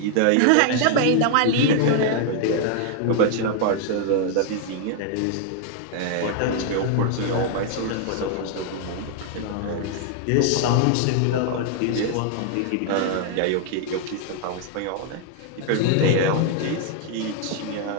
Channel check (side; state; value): both; different; correlation 0.00